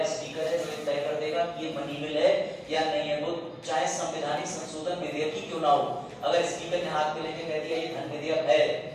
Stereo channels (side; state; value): both; identical; correlation 1.00